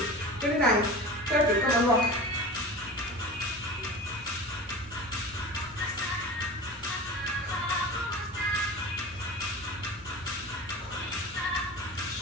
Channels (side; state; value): both; normal; correlation 0.33